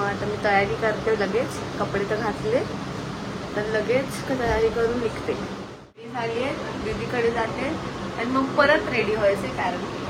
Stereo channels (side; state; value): both; identical; correlation 1.00